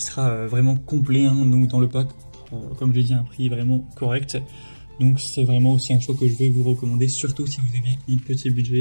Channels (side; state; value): both; inverted; correlation -1.00